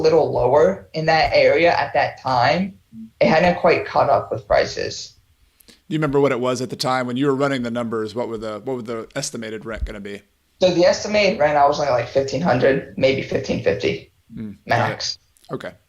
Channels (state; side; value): identical; both; correlation 1.00